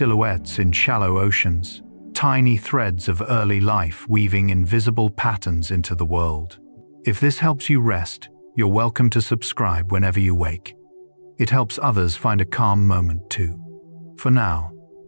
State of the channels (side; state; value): both; inverted; correlation -1.00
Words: in shallow oceans, tiny threads of early life weaving invisible patterns into the world. If this helps you rest, you're welcome to subscribe whenever you wake. It helps others find a calm moment too. For now,